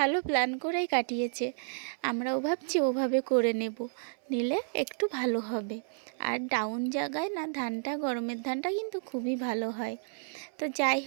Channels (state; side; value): silent; left; 57 dB below the other